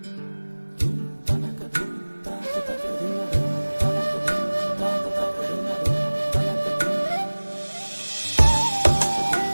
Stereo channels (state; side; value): inverted; both; correlation -1.00